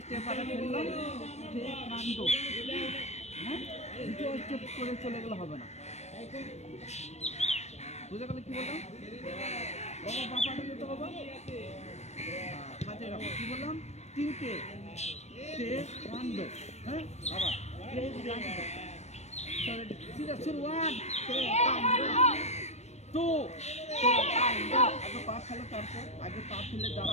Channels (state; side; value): late; right; 0.32 ms